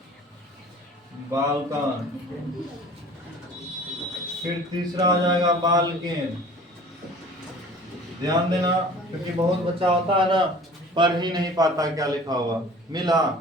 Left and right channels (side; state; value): both; normal; correlation 0.45